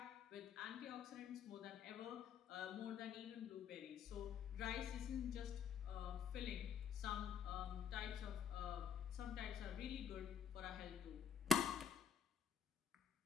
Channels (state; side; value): quieter; right; 7.3 dB